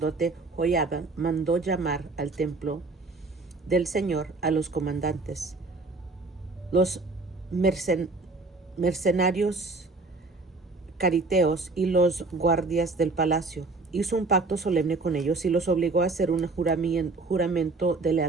Joiada mandó llamar al templo del Señor a los comandantes, los mercenarios cariteos y los guardias del palacio. Hizo un pacto solemne con ellos y los obligó a hacer un juramento de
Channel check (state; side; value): quieter; left; 3.6 dB